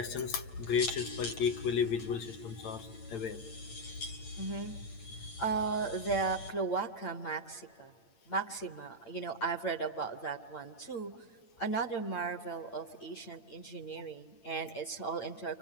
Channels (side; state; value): right; late; 8.8 ms